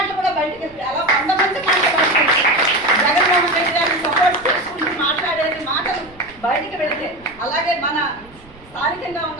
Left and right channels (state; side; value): noise; right; rumble, 24 dB below the sound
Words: కూడా బయటకు వెళ్తే అలా 100 మంది మాటలు బయటకు వెళ్తే జగన్మోహన్ రెడ్డి గారిని సపోర్ట్ చేసుకుంటూ మాట్లాడేది మాటలు బయటకు వెళితే, అలాగే మన స్థానికంగా